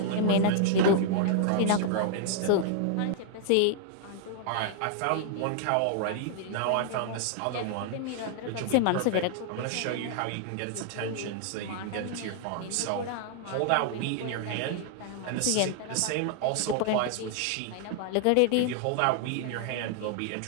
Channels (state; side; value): different; both; correlation -0.01